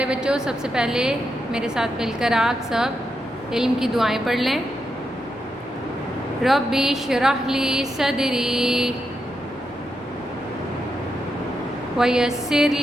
بچوں، سب سے پہلے میرے ساتھ مل کر آپ سب علم کی دعائیں پڑھ لیں۔ ربی اشرح لی صدری ویسر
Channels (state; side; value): normal; both; correlation 0.84